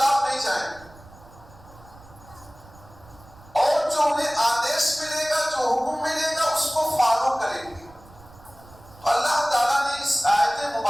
نہیں جائیں گے، اور جو انہیں آدیش ملے گا، جو حکم ملے گا، اس کو فالو کریں گے. اللہ تعالیٰ نے اس آیت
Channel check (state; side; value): noise; right; rumble, 23 dB below the sound